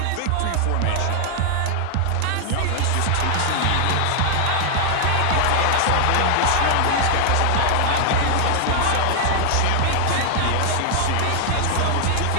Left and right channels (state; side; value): different; both; correlation 0.00